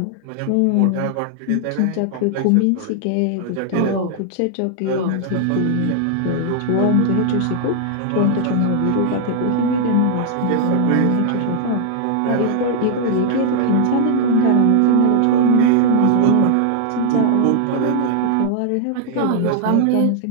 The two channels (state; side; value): different; both; correlation -0.01